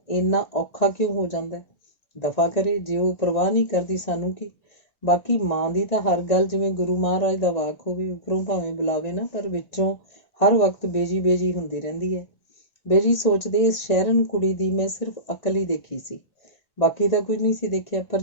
ਇੰਨਾ ਔਖਾ ਕਿਉਂ ਹੋ ਜਾਂਦਾ। ਦਫਾ ਕਰੇ, ਜੇ ਉਹ ਪਰਵਾਹ ਨਹੀਂ ਕਰਦੀ ਸਾਨੂੰ ਕੀ। ਬਾਕੀ ਮਾਂ ਦੀ ਤਾਂ ਹਰ ਗੱਲ ਜਿਵੇਂ ਗੁਰੂ ਮਹਾਰਾਜ ਦਾ ਵਾਕ ਹੋਵੇ, ਉੱਪਰੋਂ ਭਾਵੇਂ ਬੁਲਾਵੇ ਨਾ, ਪਰ ਵਿੱਚੋਂ ਹਰ ਵਕਤ ਬੇਜੀ ਬੇਜੀ ਹੁੰਦੀ ਰਹਿੰਦੀ ਹੈ। ਬੇਜੀ ਸੋਚਦੇ, ਇਸ ਸ਼ਹਿਰਨ ਕੁੜੀ ਦੀ ਮੈਂ ਸਿਰਫ ਅਕਲ ਹੀ ਦੇਖੀ ਸੀ, ਬਾਕੀ ਤਾਂ ਕੁਝ ਨਹੀਂ ਸੀ ਦੇਖਿਆ।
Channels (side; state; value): right; late; 1.4 ms